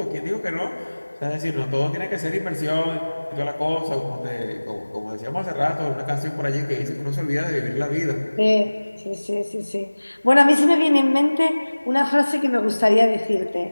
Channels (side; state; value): both; inverted; correlation -1.00